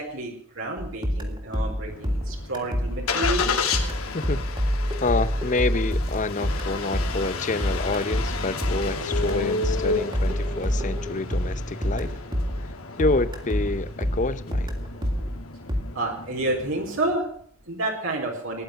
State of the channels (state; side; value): normal; both; correlation 0.47